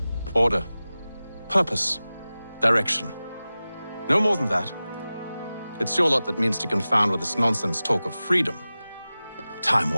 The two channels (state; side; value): inverted; both; correlation -0.96